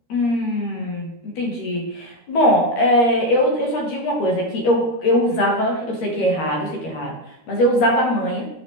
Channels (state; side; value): late; right; 13 ms